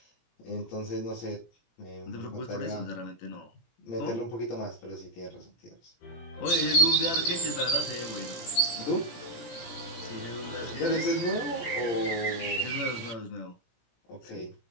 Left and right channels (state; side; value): late; right; 17 ms